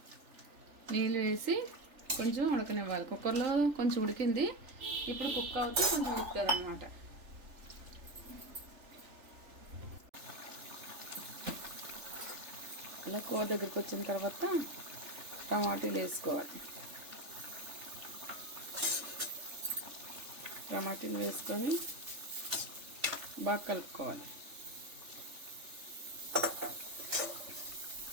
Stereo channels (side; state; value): left; late; 3.4 ms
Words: నీళ్ళు వేసి కొంచెం ఉడకనివ్వాలి. కుక్కర్లో కొంచెం ఉడికింది, ఇప్పుడు కుక్ అవుతూ కొంచెం ఉడుకుతుంది అన్నమాట. ఇలా కూర దగ్గరికి వచ్చిన తర్వాత టమాటీలు వేసుకోవాలి. టమాటీలు వేసుకొని బాగా కలుపుకోవాలి.